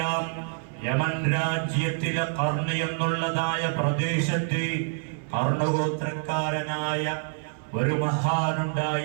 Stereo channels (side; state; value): left; silent; 59 dB below the other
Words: യമൻ രാജ്യത്തിലെ ഖർണ് എന്നുള്ളതായ പ്രദേശത്ത് ഖർണഗോത്രക്കാരനായ ഒരു